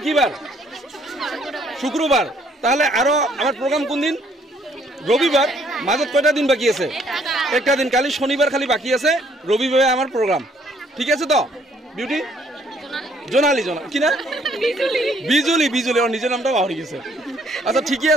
কি বার শুক্রবার তাহলে আরো আমার প্রোগ্রাম কোন দিন রবিবার মাজত কয়টা দিন বাকি আছে একটা দিন কালি শনিবার খালি বাকি আছে রবিবারে আমার প্রোগ্রাম ঠিক আছে তো বিউটি জোনালি কি না বিজুলি ওর নিজের নামটা পাহরি গেছে আচ্ছা ঠিকই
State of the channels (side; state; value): both; normal; correlation 0.65